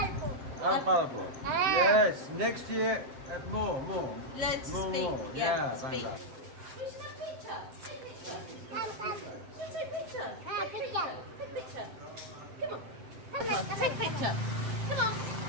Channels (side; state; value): left; late; 7.7 ms